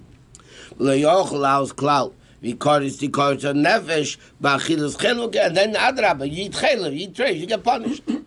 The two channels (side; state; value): both; identical; correlation 1.00